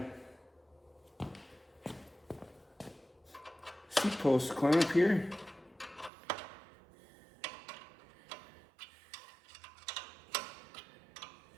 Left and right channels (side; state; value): left; drops out; at 6.1 s